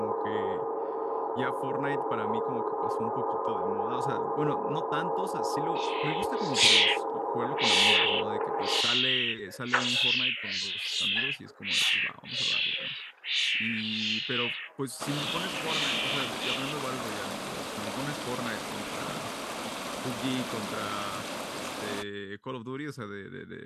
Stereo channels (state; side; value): identical; both; correlation 1.00